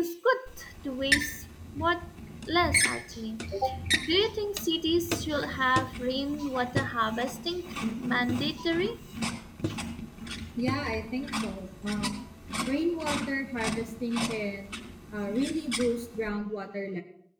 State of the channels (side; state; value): both; identical; correlation 1.00